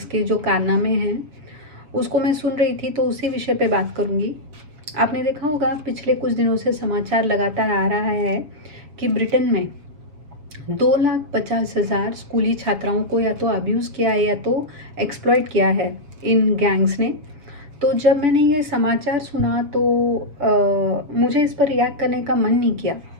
के जो कारनामे हैं उसको मैं सुन रही थी, तो उसी विषय पे बात करूँगी। आपने देखा होगा पिछले कुछ दिनों से समाचार लगातार आ रहा है कि ब्रिटेन में 2,50,000 स्कूली छात्राओं को या तो अब्यूज़ किया है या तो एक्सप्लॉइट किया है इन गैंग्स ने। तो जब मैंने ये समाचार सुना तो मुझे इस पर रिएक्ट करने का मन नहीं किया,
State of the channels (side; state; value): left; late; 6.8 ms